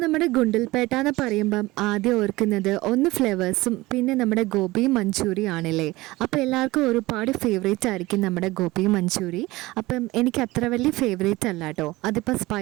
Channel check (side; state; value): left; quieter; 19.9 dB